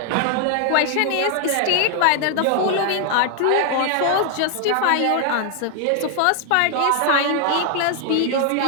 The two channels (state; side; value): different; both; correlation 0.00